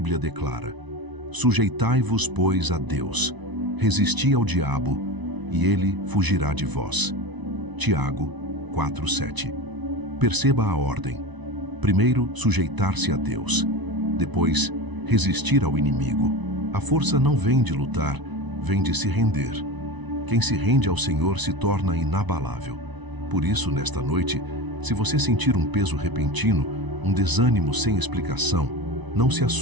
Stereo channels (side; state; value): left; late; 1.0 ms